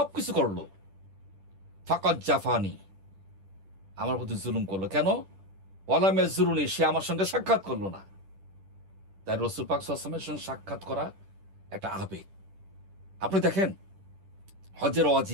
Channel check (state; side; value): late; left; 10 ms